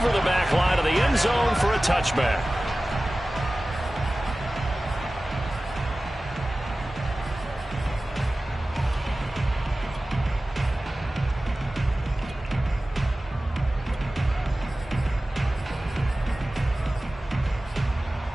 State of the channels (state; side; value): normal; both; correlation 0.96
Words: the back line of the end zone for a touchback.